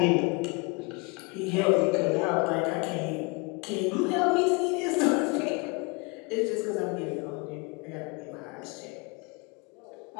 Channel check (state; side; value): quieter; right; 29.9 dB